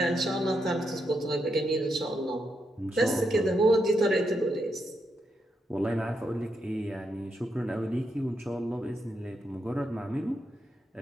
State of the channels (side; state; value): both; normal; correlation 0.82